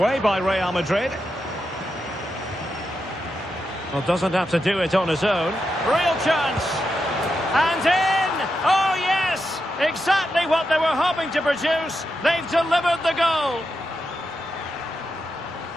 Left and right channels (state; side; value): normal; both; correlation 0.86